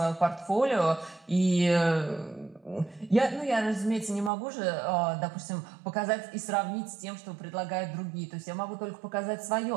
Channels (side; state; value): left; drops out; at 4.3 s